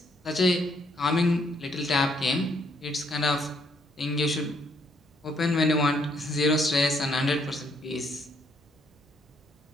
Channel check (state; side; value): normal; both; correlation 0.70